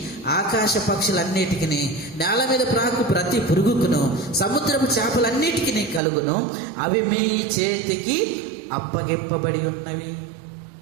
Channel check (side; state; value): left; drops out; at 6.0 s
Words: ఆకాశ పక్షులన్నిటికిని, నేల మీద ప్రాకు ప్రతి పురుగుకును, సముద్రపు చేపలన్నిటికిని కలుగును, అవి మీ చేతికి అప్పగింపబడి ఉన్నవి